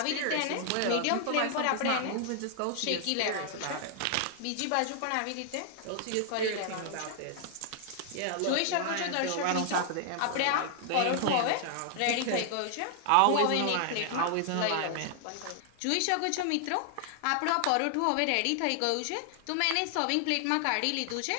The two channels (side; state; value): both; different; correlation 0.00